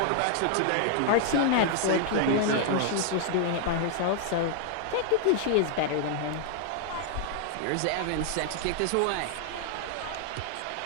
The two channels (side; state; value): both; different; correlation 0.00